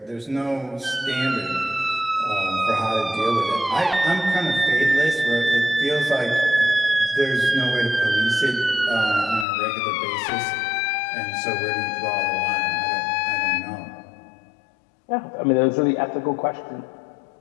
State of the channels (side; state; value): right; drops out; at 9.5 s